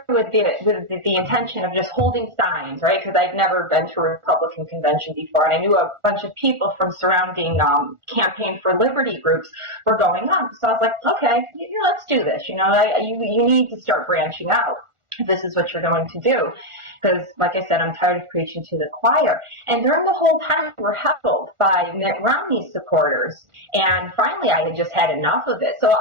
with the intention of just holding signs, right? Because I'd never been to a Republican convention before, and I knew a bunch of people from surrounding Campaign for Liberty groups were going on. So I was like, okay, let's do this. You need to start branching out. if this is what you're going to do. Because, like I said, I'm tired of preaching to the choir. And during the whole time, we were heckled by Mitt Romney supporters. And finally, I had just had enough of it. So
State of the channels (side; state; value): left; late; 1.4 ms